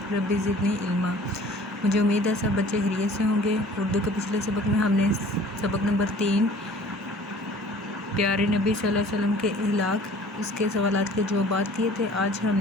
ربی زدنی علما۔ مجھے امید ہے سب بچے خیریت سے ہوں گے۔ اردو کے پچھلے سبق میں ہم نے سبق نمبر 3 پیارے نبی صلی اللہ علیہ وسلم کے اخلاق، اس کے سوالات کے جوابات کیے تھے۔ آج ہم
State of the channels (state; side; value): normal; both; correlation 0.49